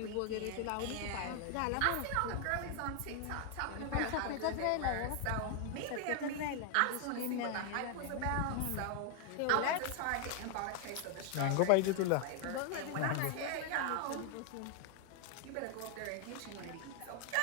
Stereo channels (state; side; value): different; both; correlation 0.00